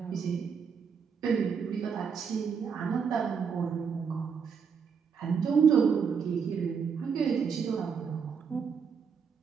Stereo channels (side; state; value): left; quieter; 6.4 dB